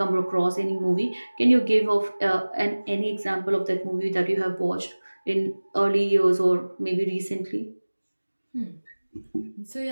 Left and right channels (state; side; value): inverted; both; correlation -1.00